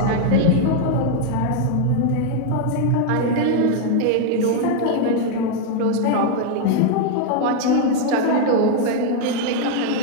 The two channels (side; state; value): both; different; correlation 0.00